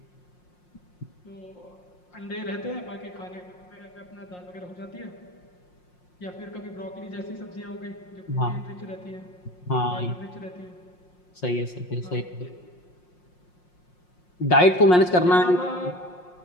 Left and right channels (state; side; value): late; right; 5.6 ms